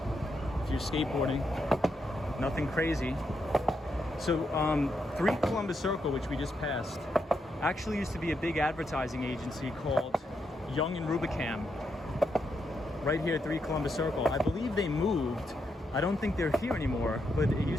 If you're skateboarding, nothing crazy. So 3 Columbus Circle, which we just passed, actually used to be a big advertising agency called Young and Rubicam. Right here at 3 Columbus Circle. I believe they moved. I don't think they're here anymore, but it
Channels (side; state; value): both; normal; correlation 0.81